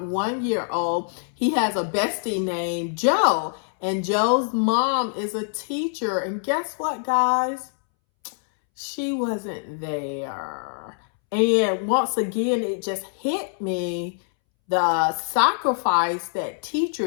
he has a bestie named Joe, and Joe's mom is a teacher. And guess what, guys? She wasn't there. And once again, it just hit me, the sacrifice that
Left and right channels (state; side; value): silent; right; 62 dB below the other